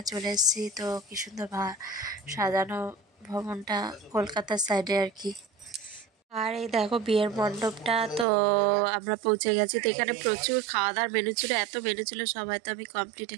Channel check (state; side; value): drops out; left; at 8.2 s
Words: চলে এসেছি। তো কি সুন্দর সাজানো ভবনটা, কলকাতার সাইডে আর কি। আর এই দেখো বিয়ের মণ্ডপটা। তো আমরা পৌঁছে গেছি। তো এখানে প্রচুর খাওয়া দাওয়ার মেনু ছিল, এত মেনু ছিল সবাই তো আমি কমপ্লিট